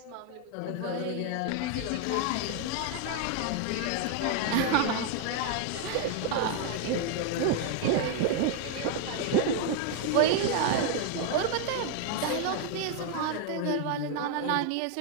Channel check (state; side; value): different; both; correlation 0.00